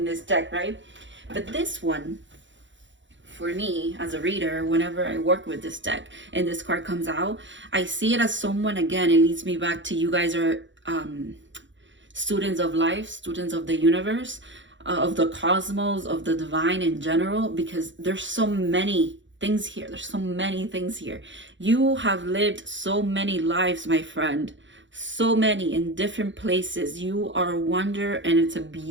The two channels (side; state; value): left; late; 0.54 ms